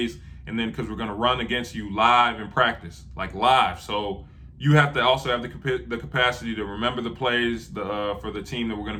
and then because we're going to run against you live in practice, like live. So you have to also have the capacity to remember the plays for the team that we're going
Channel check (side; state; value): both; identical; correlation 1.00